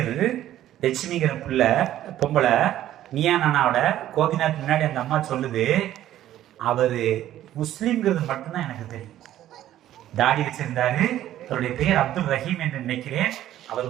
லட்சுமிங்கிற பிள்ளை பொம்பளை நீயா நானாவோட கோபிநாத் முன்னாடி அந்த அம்மா சொல்லுது, அவரு முஸ்லிம்ங்கிறது மட்டும்தான் எனக்கு தெரியும். தாடி வச்சிருந்தாரு, அவருடைய பெயர் அப்துல் ரஹீம் என்று நினைக்கிறேன். அவர்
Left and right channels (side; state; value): left; quieter; 12.8 dB